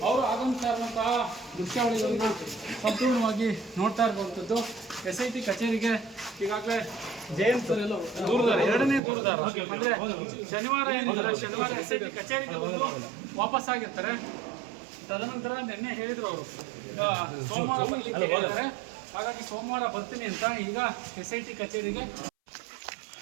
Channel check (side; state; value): left; drops out; at 9.0 s